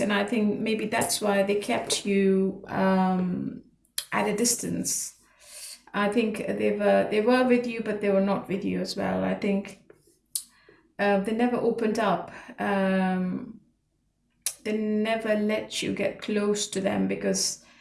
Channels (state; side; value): identical; both; correlation 1.00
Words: and I think maybe that's why they kept you at a distance. I think they were with you, but they were not with you as well. I think they never opened up. They never let you get close to them because